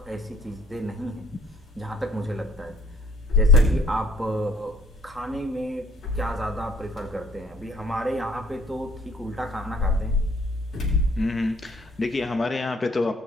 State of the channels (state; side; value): normal; both; correlation 0.59